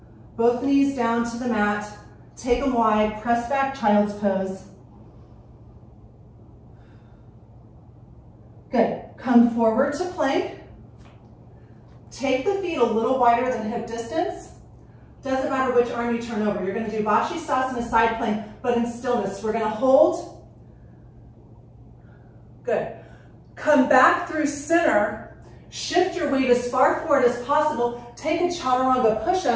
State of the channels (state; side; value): identical; both; correlation 1.00